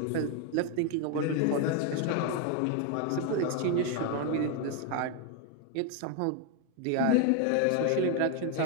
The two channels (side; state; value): both; different; correlation 0.01